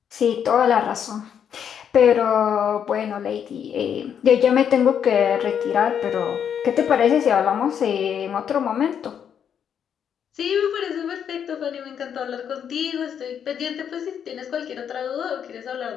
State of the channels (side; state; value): right; quieter; 8.3 dB